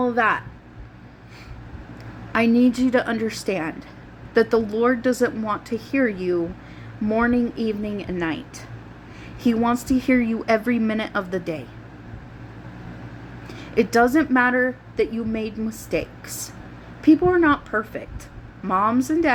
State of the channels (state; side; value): identical; both; correlation 1.00